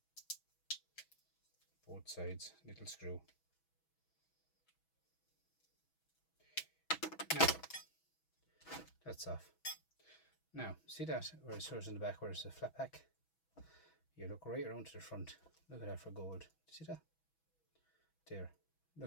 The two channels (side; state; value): right; late; 6.2 ms